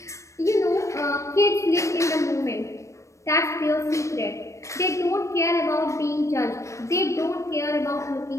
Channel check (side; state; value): right; late; 0.15 ms